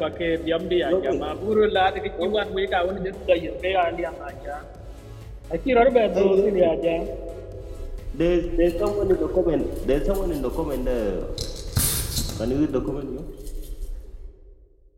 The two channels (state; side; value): identical; both; correlation 1.00